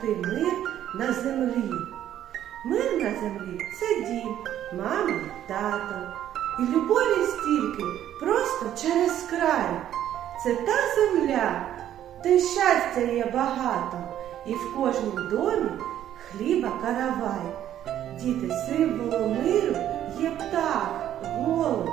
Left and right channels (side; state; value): left; quieter; 11.3 dB